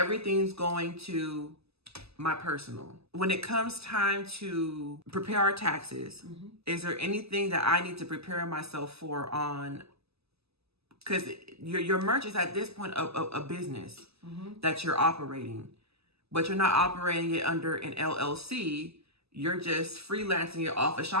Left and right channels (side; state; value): left; late; 0.79 ms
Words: going to my personal. When it comes time to prepare our taxes, is there anything that I need to prepare myself for on, because your merch is at this point a business that you're operating, but you're not operating it under an LLC. You're just freelancing it off of